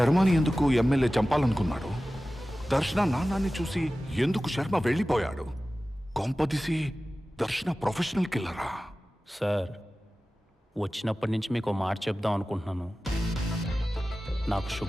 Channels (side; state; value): both; normal; correlation 0.96